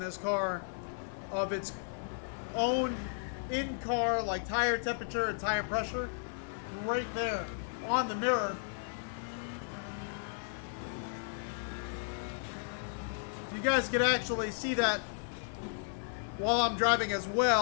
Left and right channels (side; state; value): right; silent; 55 dB below the other